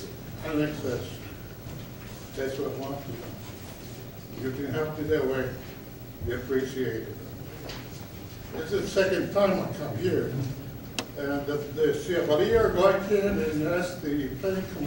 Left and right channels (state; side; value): identical; both; correlation 1.00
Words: annexation. That's what I want to know. You can help me that way, we appreciate it. This is the second time I come here, and the Chevalier got in and asked the planning